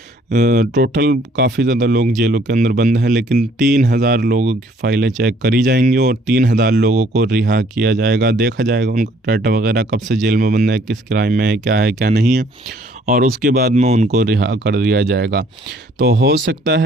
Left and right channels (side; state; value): both; normal; correlation 0.61